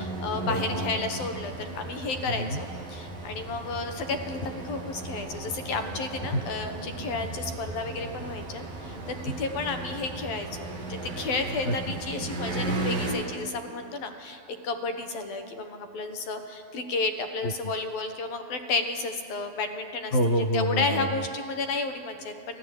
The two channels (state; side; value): late; right; 12 ms